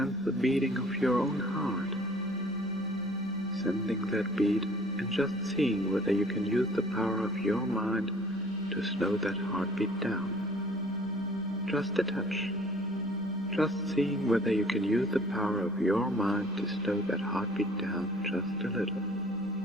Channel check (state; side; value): noise; left; rumble, 28 dB below the sound